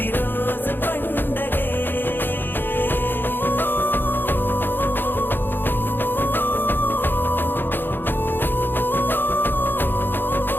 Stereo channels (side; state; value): right; late; 0.097 ms